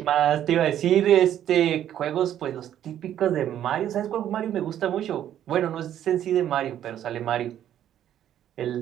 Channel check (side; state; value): left; quieter; 11.0 dB